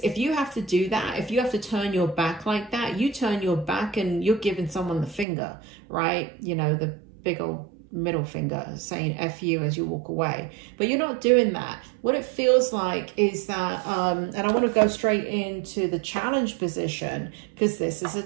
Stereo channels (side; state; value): left; drops out; at 5.2 s